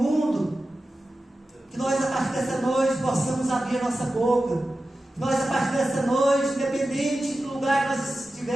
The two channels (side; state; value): both; normal; correlation 0.93